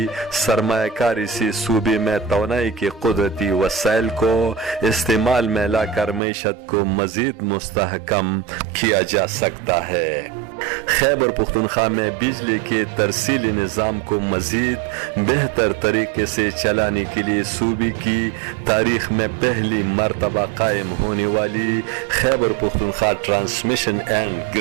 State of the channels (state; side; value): drops out; left; at 6.2 s